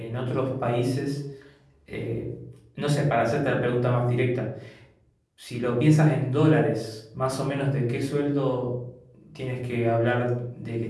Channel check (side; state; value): both; identical; correlation 1.00